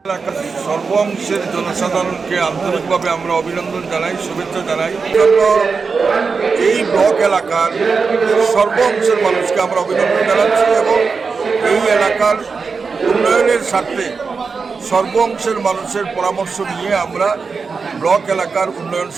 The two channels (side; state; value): left; quieter; 4.9 dB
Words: এলাকার সর্ব অংশের জনসাধারণকে আন্তরিকভাবে আমরা অভিনন্দন জানাই, শুভেচ্ছা জানাই। এই ব্লক এলাকার সর্ব অংশের মানুষকে আমরা অভিনন্দন জানাচ্ছি এবং এই এলাকার উন্নয়নের স্বার্থে সর্ব অংশের মানুষের পরামর্শ নিয়ে আমরা ব্লক এলাকার উন্নয়ন